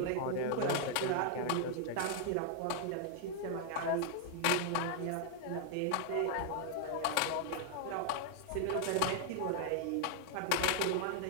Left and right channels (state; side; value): different; both; correlation 0.00